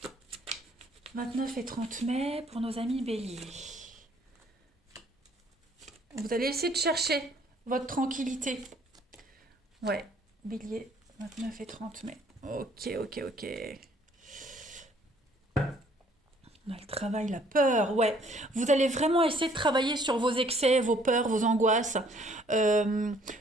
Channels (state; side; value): normal; both; correlation 0.61